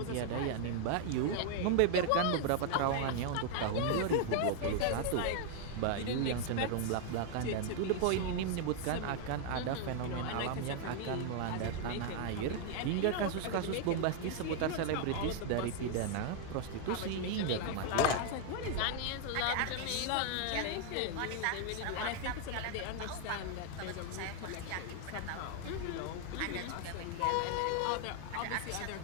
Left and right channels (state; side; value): different; both; correlation 0.00